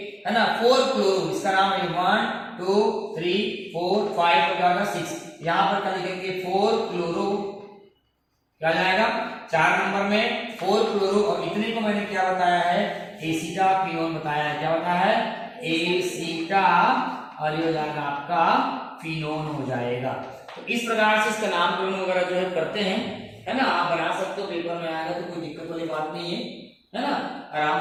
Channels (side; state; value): both; identical; correlation 1.00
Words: है ना 4 क्लोरो, इसका नाम है 1 2 3 4 5 और क्या होगा 6, यहां पर क्या लिखेंगे 4 क्लोरो, क्या जाएगा 4 नंबर में 4 क्लोरो और इतने को मैंने क्या बताया है एसीटा फिनोन बताया है, क्या बताया है एसीटा और ये हो जाएगा आपका फिनोन हो जाएगा। तो इस प्रकार से इसका नामकरण वगैरह जो है करते हैं है ना, आप बना सकते हो, पेपर में आएगा तो कोई दिक्कत वाली बात नहीं है ना, आराम